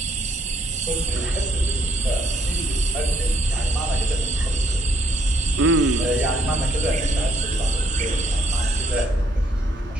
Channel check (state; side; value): normal; both; correlation 0.68